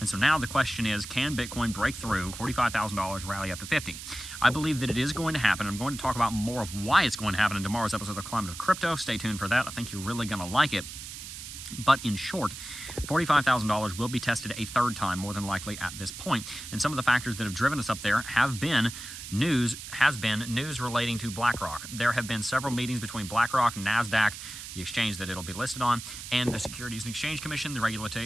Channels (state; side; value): noise; right; hiss, 11 dB below the sound